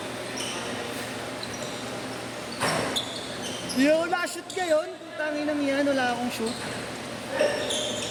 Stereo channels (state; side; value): identical; both; correlation 1.00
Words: Yo, na-shoot ngayon. Tangin ng yan, wala akong shoot.